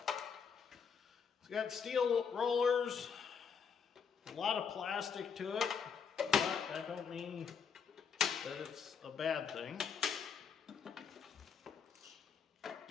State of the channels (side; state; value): right; quieter; 6.4 dB